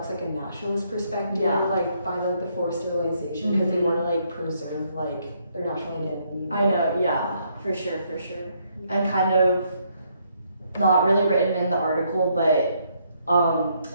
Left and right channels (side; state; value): both; inverted; correlation -0.72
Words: like a nationalist perspective, Yeah. like by like the forced sterilization, because they want to like preserve like their national identity. I know, yeah, for sure. And kind of not really written in the article, but